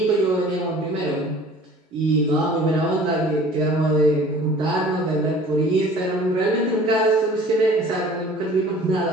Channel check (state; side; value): normal; both; correlation 0.48